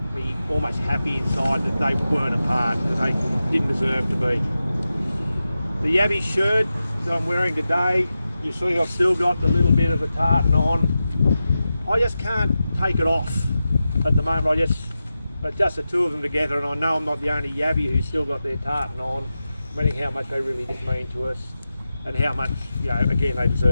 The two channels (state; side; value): inverted; both; correlation -0.92